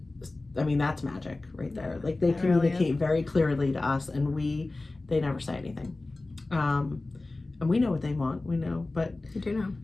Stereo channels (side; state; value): right; quieter; 3.1 dB